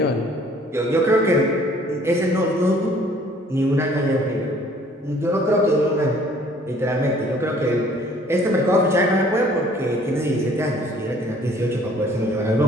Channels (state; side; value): normal; both; correlation 0.56